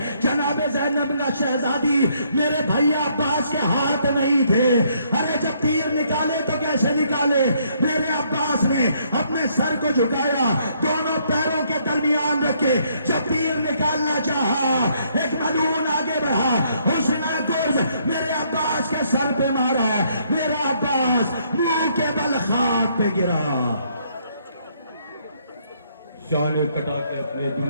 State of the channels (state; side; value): inverted; both; correlation -0.69